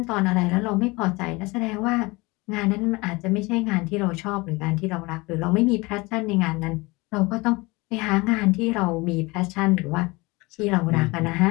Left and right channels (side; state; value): right; quieter; 23.9 dB